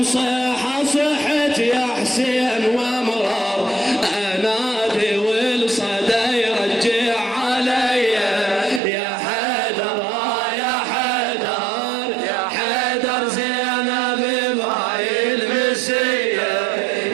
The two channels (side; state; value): left; drops out; at 8.8 s